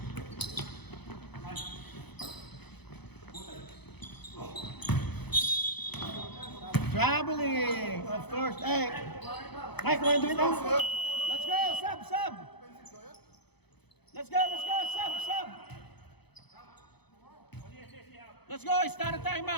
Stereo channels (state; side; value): late; right; 0.98 ms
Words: Traveling, of course. Hey, Mike, want to do it now? Let's go, sub. Let's go, sub. Let's go, it's not a